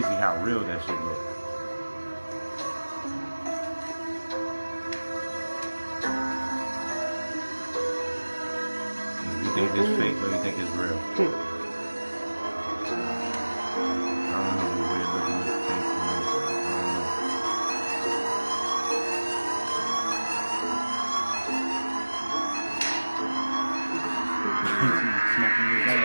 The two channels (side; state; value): both; inverted; correlation -1.00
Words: how real that shit was. You think it's fake or you think it's real?